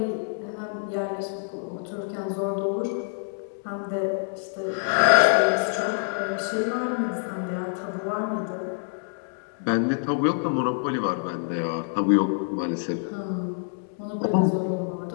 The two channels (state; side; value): silent; right; digital silence